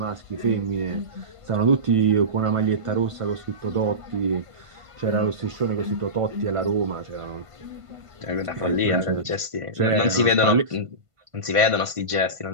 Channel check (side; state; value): left; late; 1.5 ms